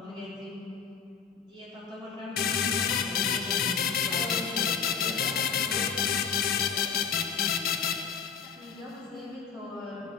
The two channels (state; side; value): quieter; right; 6.6 dB